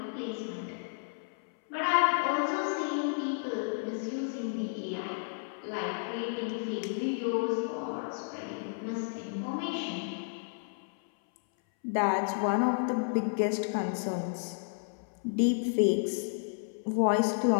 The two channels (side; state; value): right; silent; 57 dB below the other